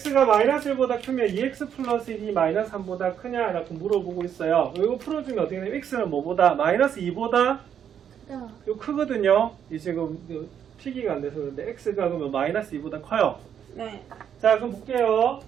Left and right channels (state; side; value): quieter; left; 8.7 dB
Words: 마이너스 1보다 크면 2x 플러스 1이 마이너스 3보다 크냐? 라고 물어보고 있어요. 이거 풀어주면 어떻게 되냐면 x는 뭐보다? 마이너스 2보다 이거 크거든요. 이 지금 피기가 안 돼서 그런데 x가 그러면 마이너스 2보다 커요. 네. 자, 그럼 볼게요.